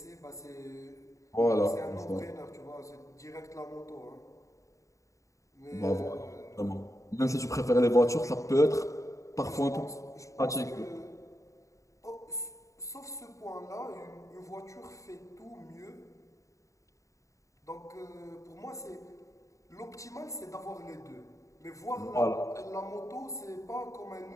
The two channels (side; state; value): right; late; 0.16 ms